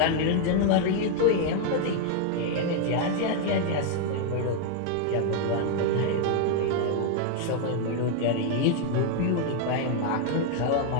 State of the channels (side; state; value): both; different; correlation 0.00